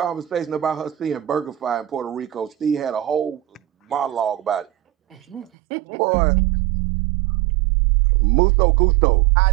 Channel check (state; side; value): drops out; left; at 5.5 s